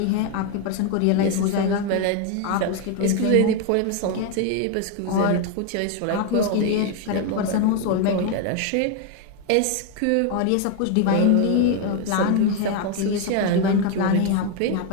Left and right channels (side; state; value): both; different; correlation 0.01